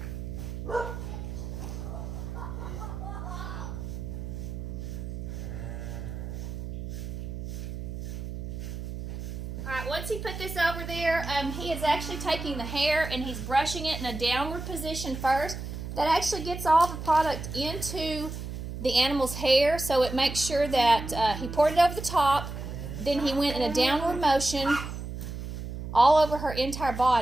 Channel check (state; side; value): noise; right; hum, 7 dB below the sound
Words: Alright, once he put this over there, he is actually taking the hair and he's brushing it in a downward position first. That actually gets all the product into the animal's hair, so it makes sure that he poured it over the top, then he went in a downward motion all over her entire